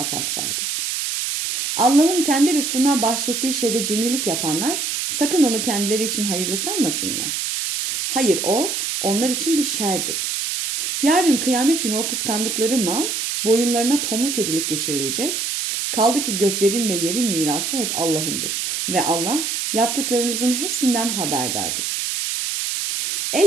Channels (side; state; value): right; noise; hiss, 1 dB below the sound